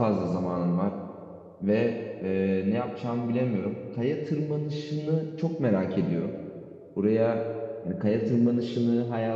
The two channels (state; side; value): identical; both; correlation 1.00